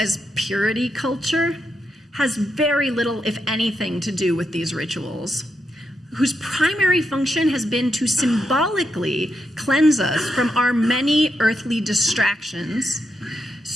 purity culture has very little, if anything, to do with these rituals, whose primary function has been to symbolically cleanse us from our many earthly distractions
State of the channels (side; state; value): both; normal; correlation 0.83